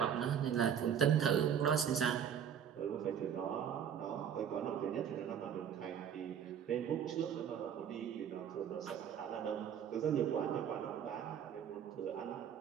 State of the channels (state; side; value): quieter; left; 8.5 dB